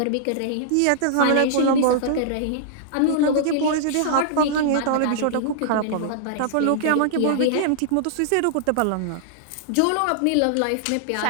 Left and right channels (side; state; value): both; different; correlation -0.01